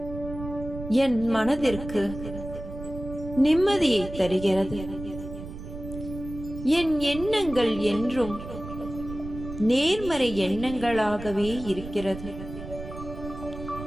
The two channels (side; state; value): right; noise; rumble, 11 dB below the sound